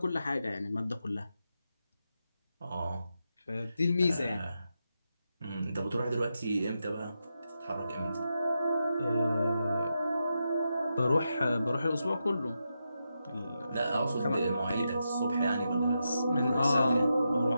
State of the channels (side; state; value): both; inverted; correlation -0.86